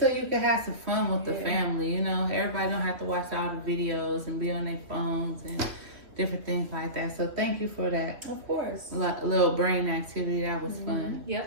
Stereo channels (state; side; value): late; left; 3.1 ms